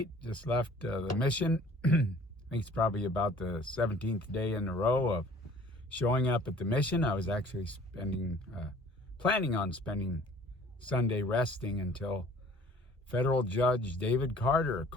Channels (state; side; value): normal; both; correlation 0.52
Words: Just left the mission. I think it's probably about the 17th day in a row of showing up at the mission. I was actually planning on spending Sunday resting until federal judge David Carter